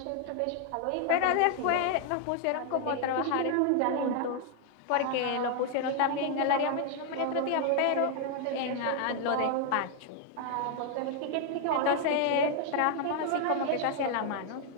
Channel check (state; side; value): different; both; correlation 0.00